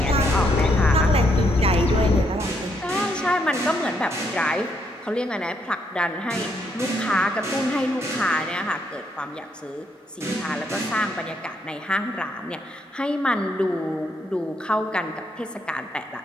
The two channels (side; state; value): both; normal; correlation 0.75